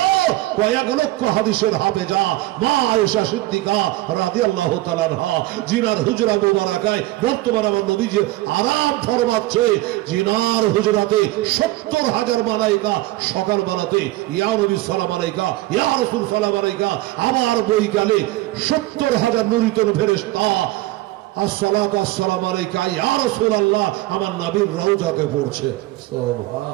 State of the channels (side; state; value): left; quieter; 17.9 dB